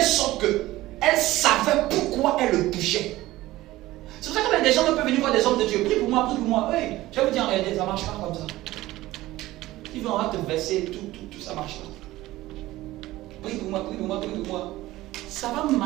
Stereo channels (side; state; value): left; quieter; 17.1 dB